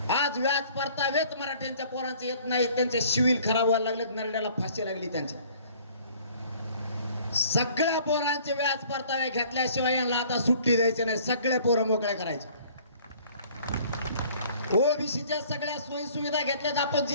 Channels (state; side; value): inverted; both; correlation -0.54